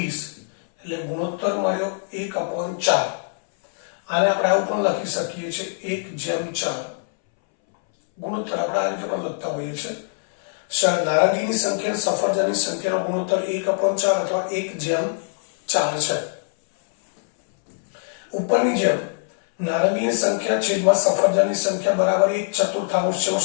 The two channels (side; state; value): right; silent; 63 dB below the other